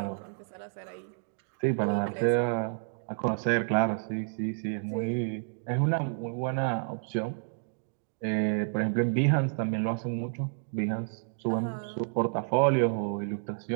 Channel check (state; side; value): silent; left; digital silence